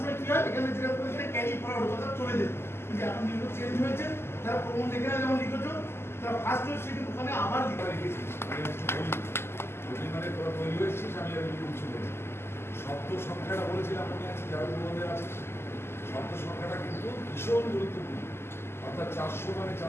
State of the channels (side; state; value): right; late; 0.12 ms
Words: কি হয় এখানে যেটা করে ক্যারি ফরওয়ার্ড কথা চলে যেত, কিন্তু এখন নিয়ম চেঞ্জ হয়েছে। যারা প্রবন্ধ এখানে যেমন লিখেছো তারা ফার্স্ট হয়ে সেটা ওখানে আবার লিখা রেখেছি। মানে তোরা তৈরি হয়েছিস, আমি আর কিছু বলি। শব্দ সংখ্যাটা বলেছিলাম মনে আছে, যারা প্রবন্ধে আছিস, শব্দ সংখ্যাটা কিন্তু ভীষণ গুরুত্বপূর্ণ। অর্থাৎ ৪০০ মানে